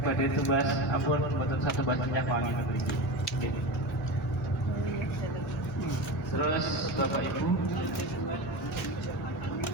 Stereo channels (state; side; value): normal; both; correlation 0.24